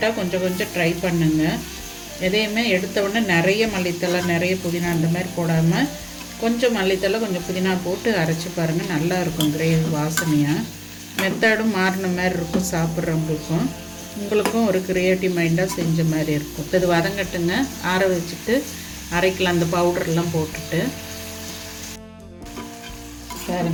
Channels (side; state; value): both; identical; correlation 1.00